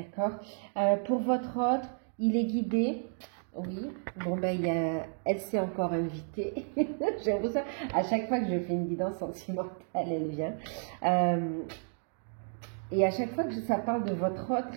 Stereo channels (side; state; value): left; silent; 56 dB below the other